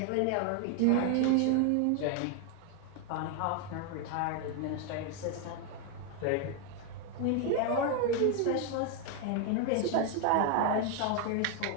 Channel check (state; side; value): different; both; correlation 0.01